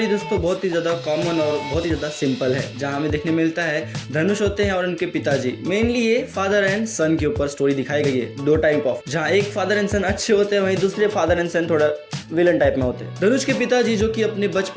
दोस्तों बहुत ही ज़्यादा कॉमन और बहुत ही ज़्यादा सिंपल है, जहां हमें देखने मिलता है धनुष होते हैं और उनके पिताजी। मेनली ये फादर एंड सन के ऊपर स्टोरी दिखाई गई है, दो टाइप ऑफ, जहाँ एक फादर एंड सन अच्छे होते हैं, वहीं दूसरे फादर एंड सन थोड़ा विलन टाइप में होते हैं। धनुष के पिताजी जो कि अपने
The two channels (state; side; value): identical; both; correlation 1.00